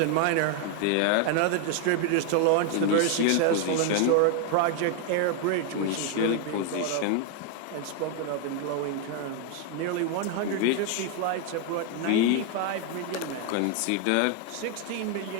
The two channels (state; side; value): different; both; correlation 0.00